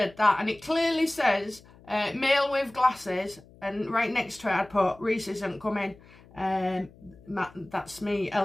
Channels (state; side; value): noise; left; hum, 24 dB below the sound